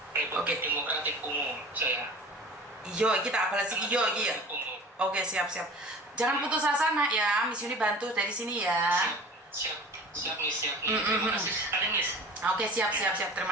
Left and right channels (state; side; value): normal; both; correlation 0.40